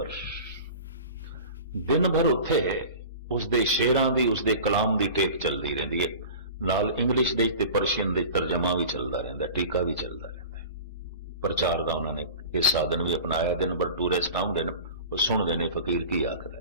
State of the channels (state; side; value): inverted; both; correlation -0.37